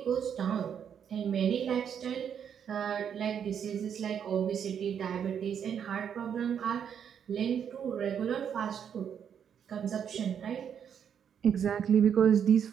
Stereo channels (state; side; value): quieter; left; 8.2 dB